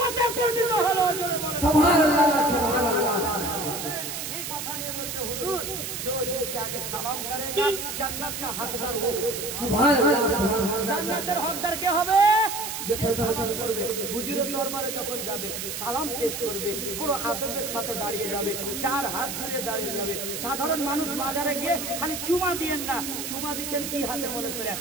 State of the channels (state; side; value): noise; right; hiss, 5 dB below the sound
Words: পরিণত হলো। সুবহানাল্লাহ সুবহানাল্লাহ। ये কথা নিয়ে বলছে হুজুর जो जिससे आगे सलाम करेगा जन्नत का हकदार हो। सुभान अल्लाह। জান্নাতের হকদার কে হবে? যে সালাম করবে। হুজুরের দরবারে যখন যাবে সালাম পেশ করবে, পুরো আদবের সাথে দাঁড়িয়ে যাবে, চার হাত ধরে দাঁড়িয়ে যাবে। সাধারণ মানুষ বাজারে গিয়ে খালি চুমা দিয়েন না, চুমা দিচ্ছেন কি হাতে মনে করে,